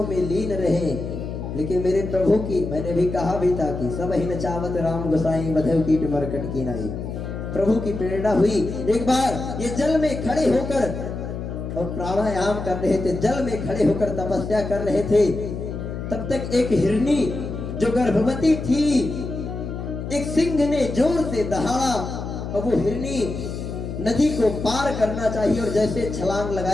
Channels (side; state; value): left; noise; hum, 6 dB below the sound